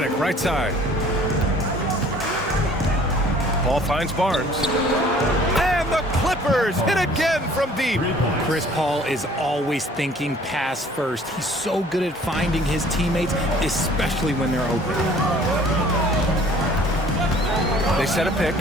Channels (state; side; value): normal; both; correlation 0.53